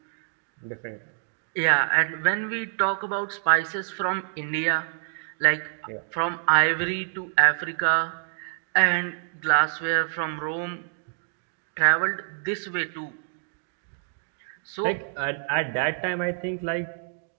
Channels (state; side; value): silent; left; digital silence